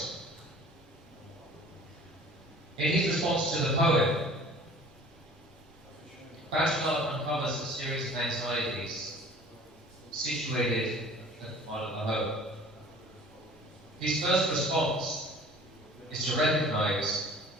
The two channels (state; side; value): normal; both; correlation 0.47